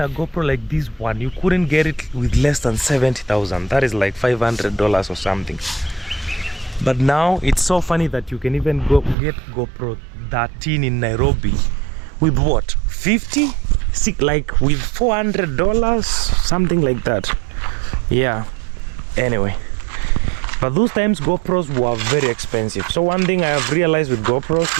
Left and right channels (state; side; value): drops out; left; at 9.2 s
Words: GoPro like this one, you couldn't get it with less than 70,000. That is like $500 or something. But now it's so funny that you can even get GoPro 13 in Nairobi with what, 50, like with $400, something like that. Yeah. Anyway, but those times GoPros were very expensive. So one thing I have realized with GoPros,